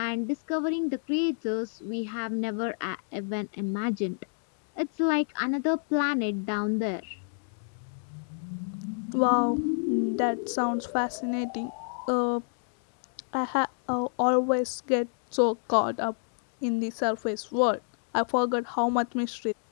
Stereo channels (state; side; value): silent; right; digital silence